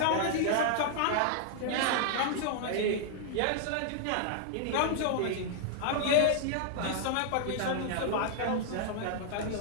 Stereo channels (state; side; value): different; both; correlation 0.00